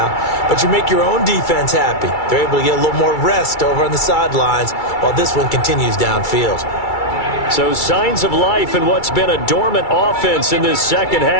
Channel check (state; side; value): late; right; 2.3 ms